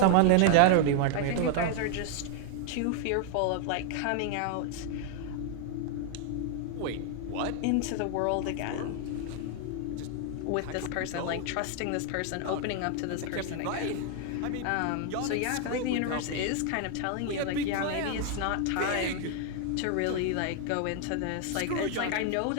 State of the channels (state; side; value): different; both; correlation 0.00